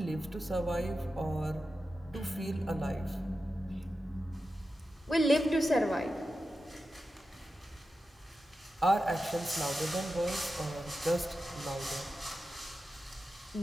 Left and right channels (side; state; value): both; normal; correlation 0.91